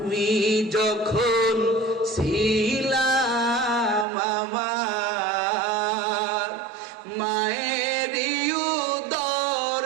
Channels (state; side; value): drops out; left; at 4.0 s